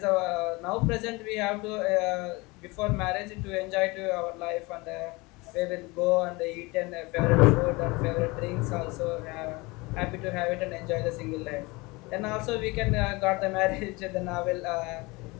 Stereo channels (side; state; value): right; quieter; 24.4 dB